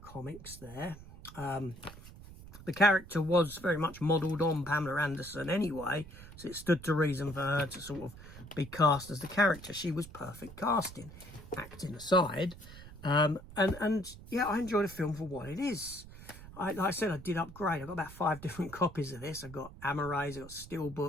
comics there. The character was very much modelled on Pamela Anderson anyway, so it stood to reason for her to sort of be cast as the character. She was perfect casting, acting aside. And yeah, I enjoy the film for what it is. like I said, I did upgrade. I got about 5 different copies of this. I got Arries, I got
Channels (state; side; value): noise; right; rumble, 16 dB below the sound